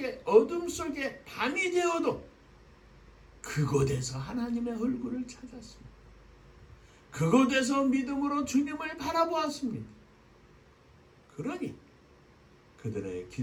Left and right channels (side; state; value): both; identical; correlation 1.00